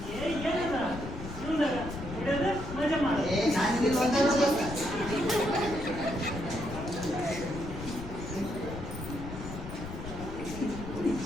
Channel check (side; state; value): left; noise; rumble, 9 dB below the sound